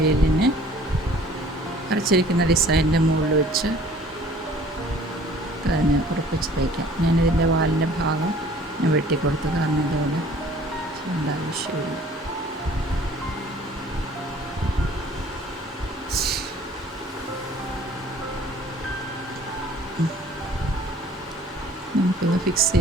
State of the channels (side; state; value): both; normal; correlation 0.52